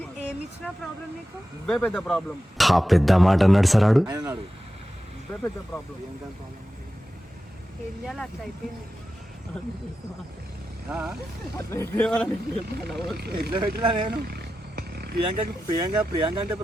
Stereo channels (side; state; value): both; normal; correlation 0.92